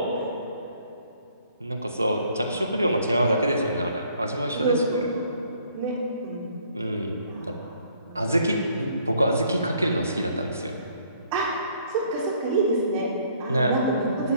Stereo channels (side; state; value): both; inverted; correlation -0.62